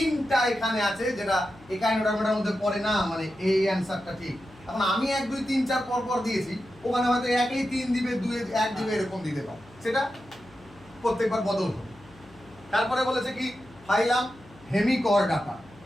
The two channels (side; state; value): left; noise; hum, 24 dB below the sound